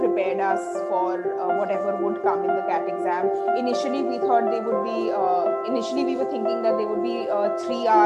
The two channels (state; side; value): identical; both; correlation 1.00